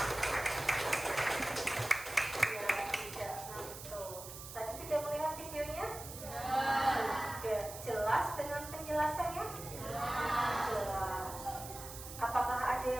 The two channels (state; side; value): noise; right; hiss, 11 dB below the sound